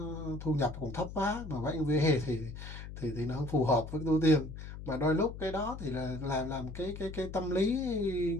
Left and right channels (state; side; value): noise; left; hum, 10 dB below the sound